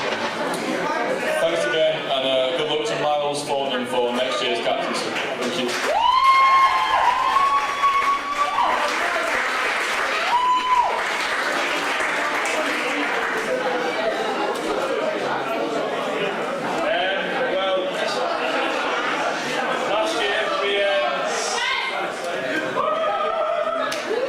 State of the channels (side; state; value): both; identical; correlation 1.00